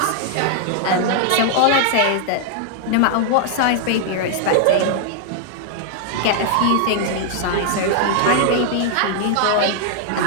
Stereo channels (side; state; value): both; different; correlation -0.01